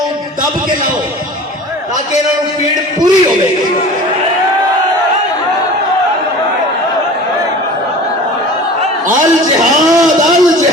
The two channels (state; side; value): normal; both; correlation 0.39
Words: دب کے لاؤ تاکہ انہوں نے پیڑ پوری ہو گئی۔ الجہاد